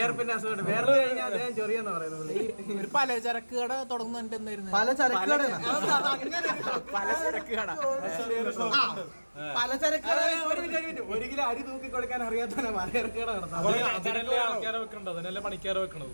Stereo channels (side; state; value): both; inverted; correlation -1.00